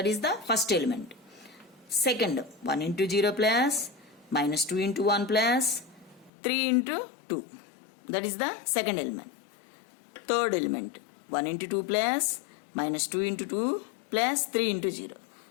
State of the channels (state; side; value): drops out; right; at 6.3 s